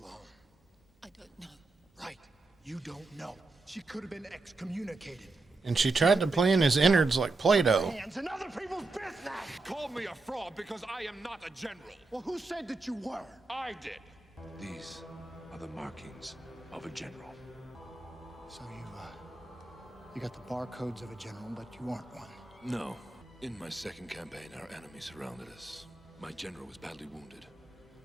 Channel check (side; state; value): left; quieter; 3.4 dB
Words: I don't know. Right. You don't know. She could have been excommunicated. And she tried to play in his innards like Play-Doh. Hands in other people's business! Call me a fraud because I am not a general. Well, who said that you were? I did. These are the markings of a general. So you got the barcodes of a general, but you aren't one. No. In my second campaign, our enemy surrounded us. My general was badly wounded.